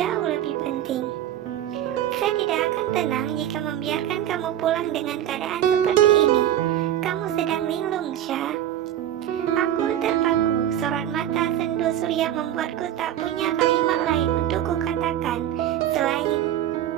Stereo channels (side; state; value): left; quieter; 11.5 dB